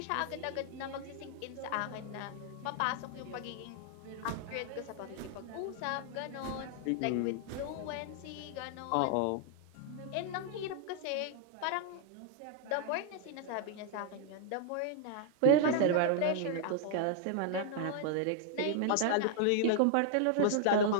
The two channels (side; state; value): both; different; correlation 0.00